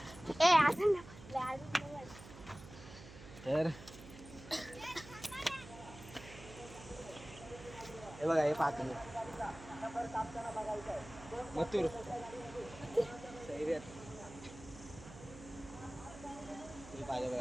तर हे बघा, हे पाहतो मी मथुर सैर्यात हे पाहिजे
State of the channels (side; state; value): right; noise; hum, 16 dB below the sound